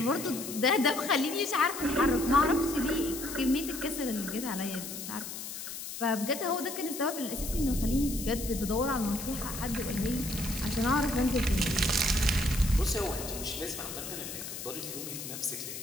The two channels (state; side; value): noise; left; hiss, 8 dB below the sound